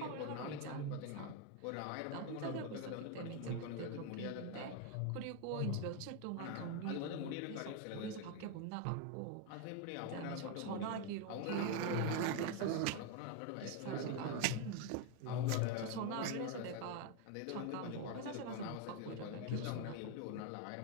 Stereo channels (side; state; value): both; different; correlation 0.01